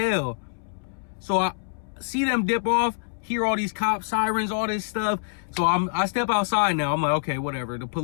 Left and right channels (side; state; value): right; silent; 61 dB below the other